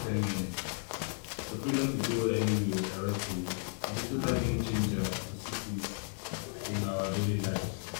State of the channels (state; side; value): silent; right; 55 dB below the other